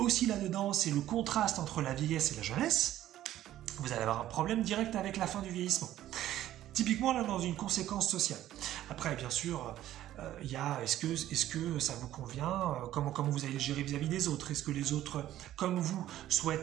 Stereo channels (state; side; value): quieter; left; 13.2 dB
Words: là-dedans, c'est le contraste entre la vieillesse et la jeunesse, vous allez avoir un problème direct avec la fin du vieillissement. Typiquement, là, dans une conséquence sociale. Après, bien sûr, il y a est-ce que ça vous convient, comment vous allez gérer vis-à-vis des autres, est-ce que les autres, comme vous,